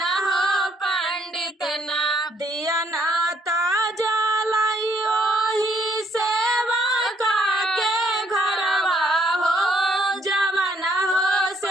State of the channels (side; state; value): both; normal; correlation 0.69